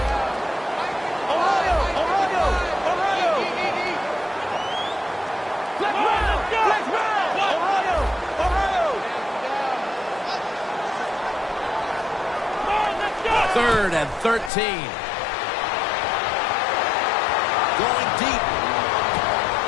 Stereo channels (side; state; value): right; drops out; at 14.5 s